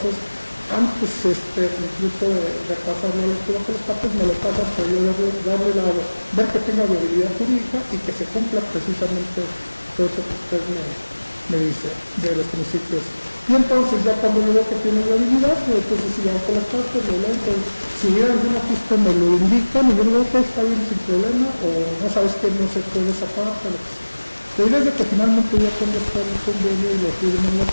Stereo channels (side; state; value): both; inverted; correlation -1.00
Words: antes incluso de pasarlo a la lectura con las partes, me lo pasan para yo ver que tenga viabilidad jurídica y que se cumpla precisamente todo eso que usted me dice de los principios. Y entonces ya cuando yo veo que tiene viabilidad, entonces si ya con las partes, si hubiera algún ajuste me lo indican y yo digo que está bien sin problema, o no sabes que no se puede sacar, o lo que sea. La idea es de que finalmente ya cuando está el convenio y lo firman las